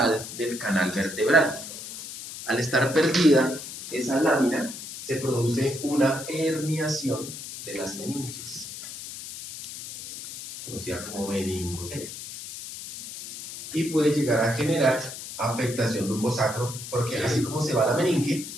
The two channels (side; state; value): left; noise; hiss, 10 dB below the sound